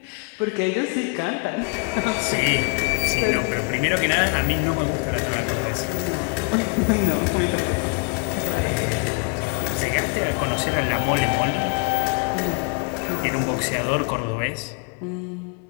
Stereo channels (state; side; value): quieter; right; 34.2 dB